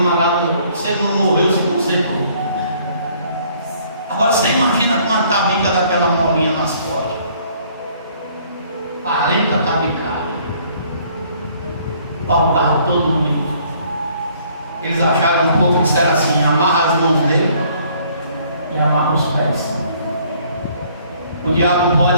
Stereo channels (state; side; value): inverted; both; correlation -0.61